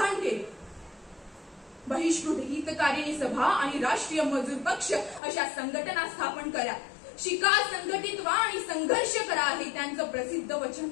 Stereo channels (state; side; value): drops out; right; at 5.2 s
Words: केले। बहिष्कृत हितकारिणी सभा आणि राष्ट्रीय मजूर पक्ष अशा संघटना स्थापन करा, शिका, संघटित व्हा आणि संघर्ष करा, हे त्यांचं प्रसिद्ध वचन